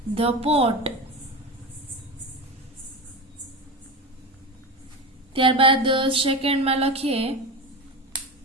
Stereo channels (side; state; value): both; normal; correlation 0.23